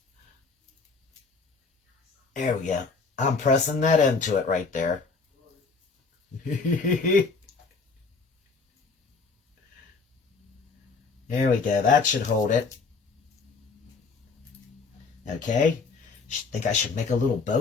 There we go. I'm pressing that into it right there. There we go. That should hold it. Okay. Think I should make a little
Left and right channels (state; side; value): quieter; right; 4.6 dB